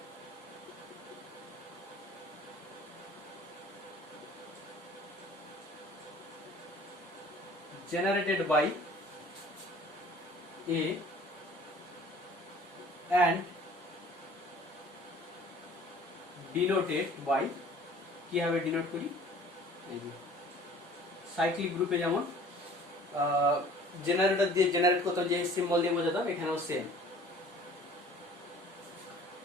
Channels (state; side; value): normal; both; correlation 0.49